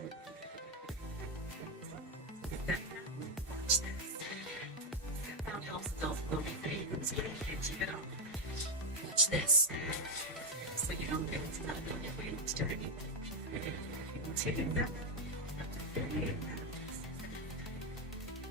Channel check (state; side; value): normal; both; correlation 0.06